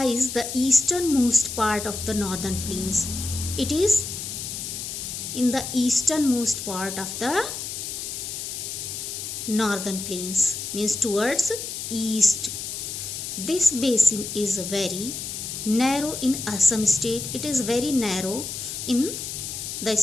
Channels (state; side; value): noise; left; hiss, 6 dB below the sound